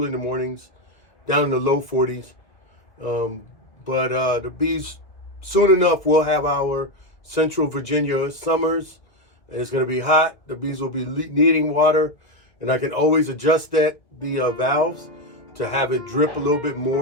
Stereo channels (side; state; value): right; late; 2.0 ms